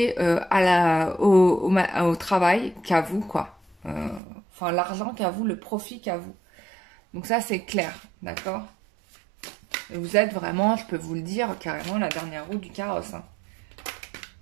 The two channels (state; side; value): drops out; left; at 4.2 s